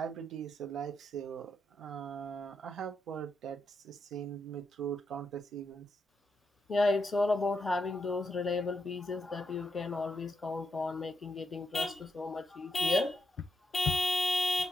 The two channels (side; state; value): both; normal; correlation 0.82